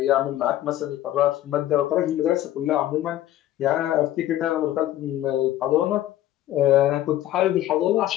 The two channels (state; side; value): quieter; right; 13.4 dB